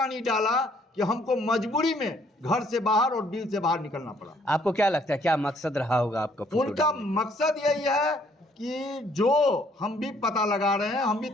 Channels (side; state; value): both; normal; correlation 0.65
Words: डाला कि हमको मजबूरी में घर से बाहर और बिल से बाहर निकलना पड़ा। आपको क्या लगता है, क्या मकसद रहा होगा आपका? उनका मकसद यही है कि जो हम भी पता लगा रहे हैं, हम भी